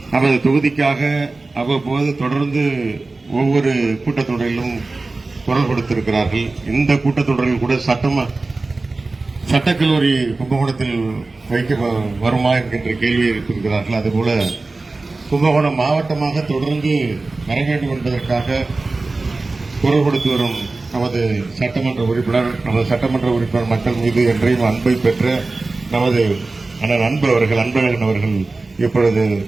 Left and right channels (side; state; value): left; quieter; 3.5 dB